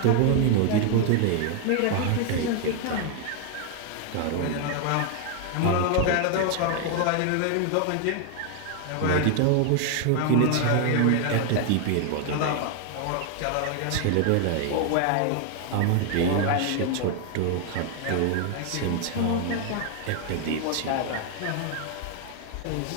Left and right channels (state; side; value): different; both; correlation 0.00